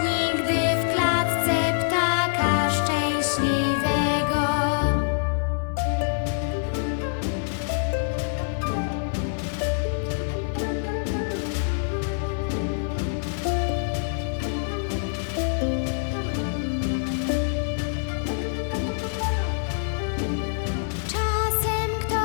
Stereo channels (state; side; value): silent; right; 61 dB below the other